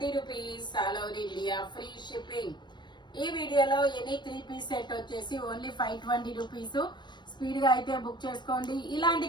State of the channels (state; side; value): late; right; 0.22 ms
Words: rupees all over India, free shipping. ఈ వీడియోలో ఎనీ 3 పీస్ సెట్ వచ్చేసి ఓన్లీ 520 రూపీస్. స్పీడ్ గా అయితే బుక్ చేసుకోండి. ఇలాంటి